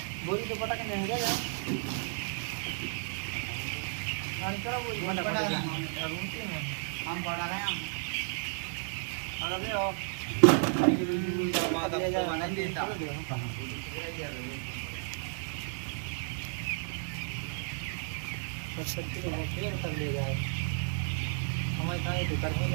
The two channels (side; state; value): left; silent; 56 dB below the other